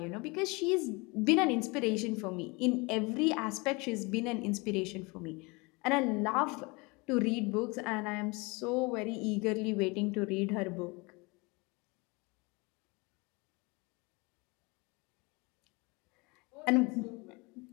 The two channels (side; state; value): right; quieter; 27.1 dB